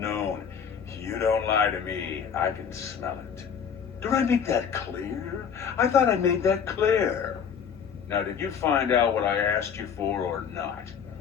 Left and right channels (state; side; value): quieter; right; 7.3 dB